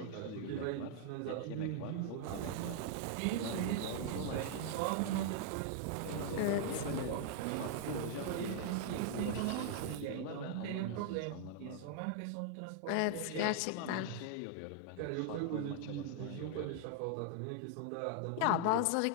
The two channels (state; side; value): different; both; correlation -0.01